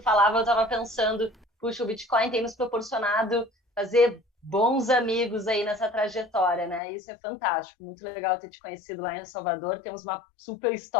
falava, eu tava pensando, puxa, o Bitcoin tem nos proporcionado fazer bons amigos aí nessa trajetória, né? Isso é fantástico, muito legal ter te conhecido lá em El Salvador. Temos uma super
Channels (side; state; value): right; drops out; at 6.8 s